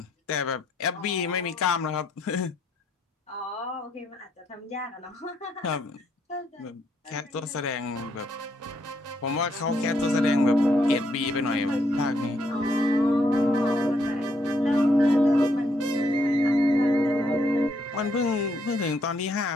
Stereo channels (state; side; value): normal; both; correlation 0.74